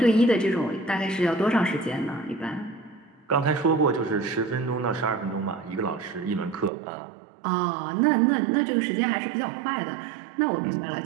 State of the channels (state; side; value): drops out; left; at 6.7 s